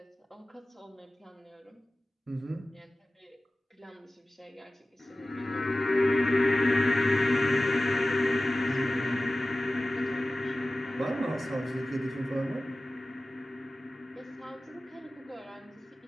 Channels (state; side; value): normal; both; correlation 0.96